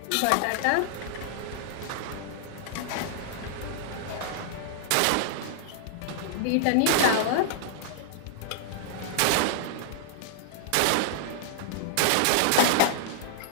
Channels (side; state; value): both; different; correlation -0.01